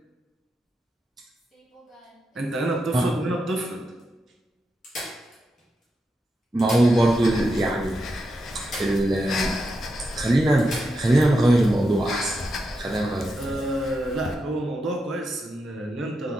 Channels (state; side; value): normal; both; correlation 0.86